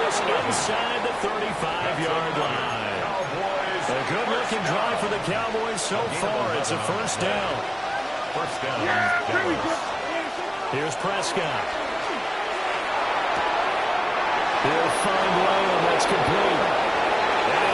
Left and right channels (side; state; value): both; identical; correlation 1.00